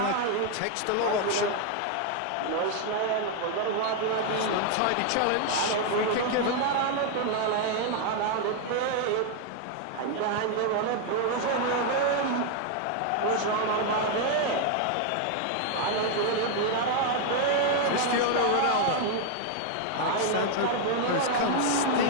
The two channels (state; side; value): different; both; correlation 0.00